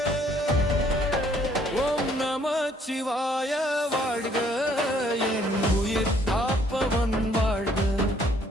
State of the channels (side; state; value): both; normal; correlation 0.64